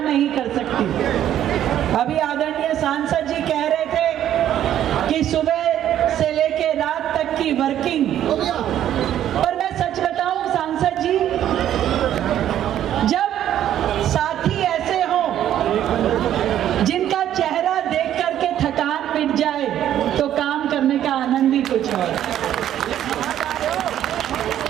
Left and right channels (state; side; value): quieter; left; 11.2 dB